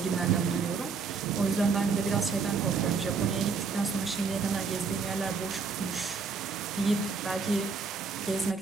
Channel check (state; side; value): quieter; left; 5.0 dB